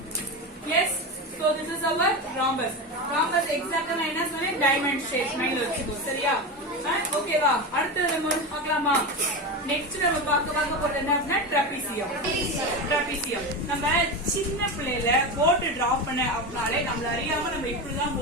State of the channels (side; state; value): both; normal; correlation 0.20